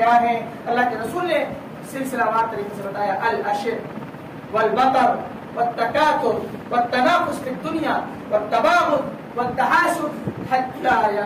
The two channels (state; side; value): identical; both; correlation 1.00